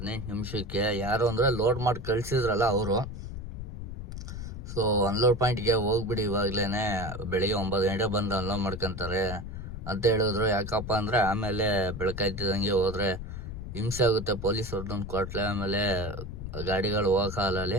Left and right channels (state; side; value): noise; left; rumble, 8 dB below the sound